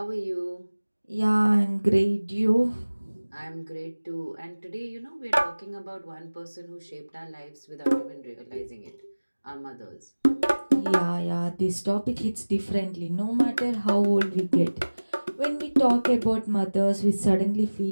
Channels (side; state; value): both; inverted; correlation -1.00